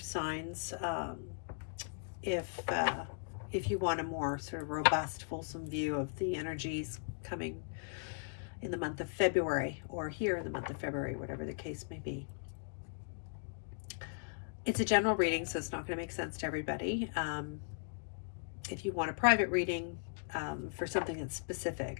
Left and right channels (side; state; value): right; silent; digital silence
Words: if you want a more sort of robust, fulsome view of the energies coming in the month of February, or here in the month of February, whatever the case may be. It's a general reading, so it's not going to make sense to everybody. If you want a private reading for something that's